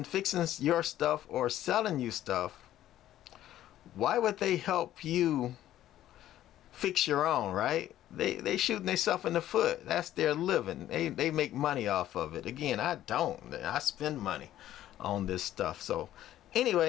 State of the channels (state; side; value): quieter; right; 12.9 dB